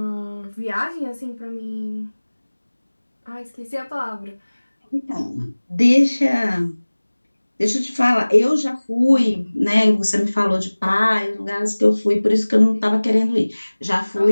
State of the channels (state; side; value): inverted; both; correlation -1.00